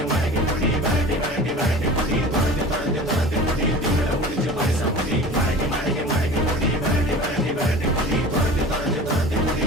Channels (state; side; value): normal; both; correlation 0.39